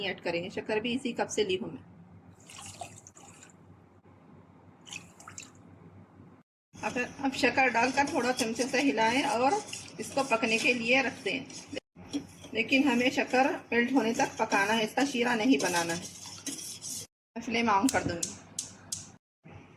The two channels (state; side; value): identical; both; correlation 1.00